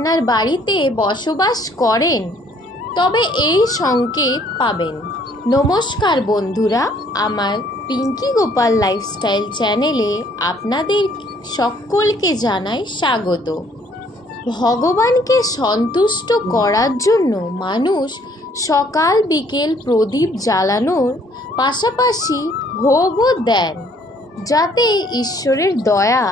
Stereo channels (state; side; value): normal; both; correlation 0.62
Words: বাড়িতে বসবাস করেন তবে এই সংকেত পাবেন। নমস্কার বন্ধুরা, আমার পিঙ্কি গোপাল লাইফস্টাইল চ্যানেলে আপনাদের সকলকে জানাই স্বাগত। ভগবানকে সন্তুষ্ট করার জন্য মানুষ সকাল বিকেল প্রদীপ জ্বালানোর পাশাপাশি ভোগও দেন, যাতে ঈশ্বরের দয়া